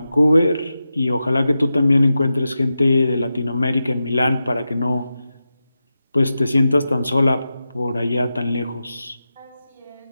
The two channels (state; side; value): inverted; both; correlation -0.91